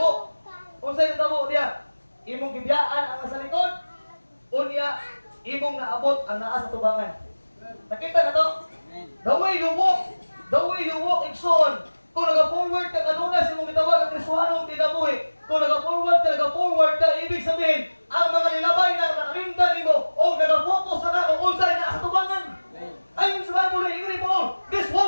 Unsay nahitabo diya? Imong gibiyaan ang nasa likod, unya imong naabot ang naa sa tubangan. Nakita na to? The way you walk, igsoon. Kung nag-forward ka kanuna sa imong gitawag ang Kristohanong kinabuhi, kung nag-forward ka, ibig sabihin, ang mga nilabay na nakalimtan nimo o nag-focus na kung unsay naa sa tubangan. Ayun sa Bible, Ingrid Paul, this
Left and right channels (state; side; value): inverted; both; correlation -1.00